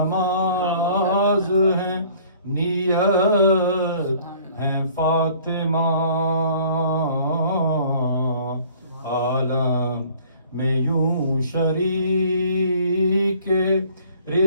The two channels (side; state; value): both; inverted; correlation -0.54